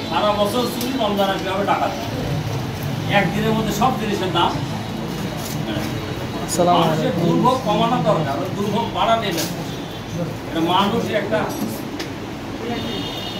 সারা বছর চুরি, রমজান আসবে হবে ডাকাতি। একদিনের মধ্যে সব জিনিসের দাম। মানুষের দুর্ভোগ কমানো দরকার, দুর্ভোগ বাড়া নেবে। এটা মানুষই একটা,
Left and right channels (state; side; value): identical; both; correlation 1.00